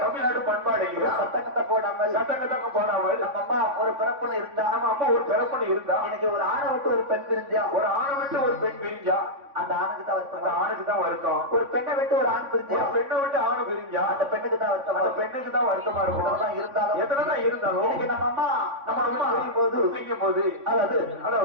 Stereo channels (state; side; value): late; left; 3.5 ms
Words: தமிழ்நாடு பண்பாடு இல்லையா? சட்டக்கத்தை போடாமல் நம்ம அம்மா ஒரு பிறப்புல இருந்தா, நம்ம அம்மா ஒரு பிறப்புல இருந்தா, இன்னைக்கு ஒரு ஆணை விட்டு ஒரு பெண் பிரிஞ்சா, ஒரு ஆணை விட்டு ஒரு பெண் பிரிஞ்சா அந்த ஆணுக்கு தான் வருத்தம். அந்த ஆணுக்கு தான் வருத்தம். ஒரு பெண்ணை விட்டு ஒரு ஆண் பிரிஞ்சா, ஒரு பெண்ணை விட்டு ஆணு பிரிஞ்சா அந்த பெண்ணுக்கு தான் வருத்தம். அந்த பெண்ணுக்கு தான் வருத்தமா இருக்கும். எத்தனைதான் இருந்தாலும் இன்னைக்கு நம்ம அம்மா செய்யும் போது